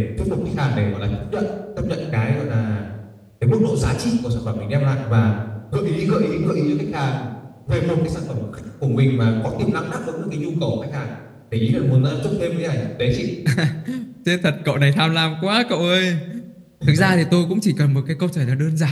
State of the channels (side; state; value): both; identical; correlation 1.00